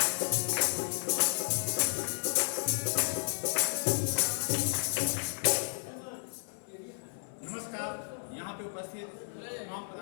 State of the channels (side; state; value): right; silent; 56 dB below the other